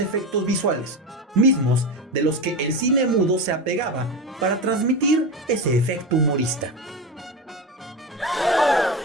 visuales, mismos de los que el cine mudo se apegaba para transmitir ese efecto humorista.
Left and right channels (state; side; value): normal; both; correlation 0.21